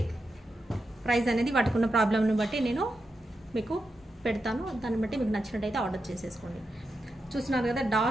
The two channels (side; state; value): both; normal; correlation 0.87